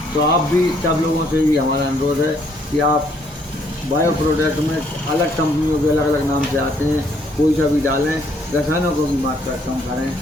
तो आप भी सब लोगों से भी हमारा अनुरोध है कि आप बायो प्रोडक्ट में अलग कंपनियों के अलग अलग नाम से आते हैं, कोई सा भी डालें, रसायनों को भी मात्रा कम करें।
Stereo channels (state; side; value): normal; both; correlation 0.67